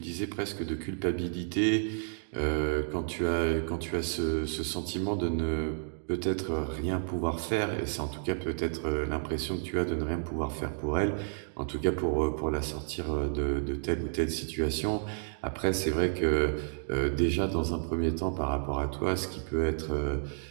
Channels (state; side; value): silent; left; digital silence